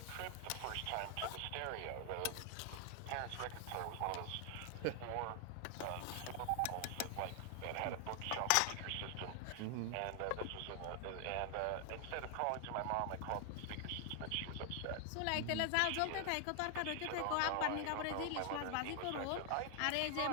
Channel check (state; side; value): different; both; correlation 0.00